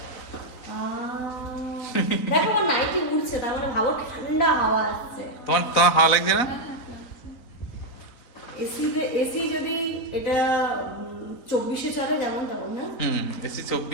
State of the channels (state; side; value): late; right; 4.0 ms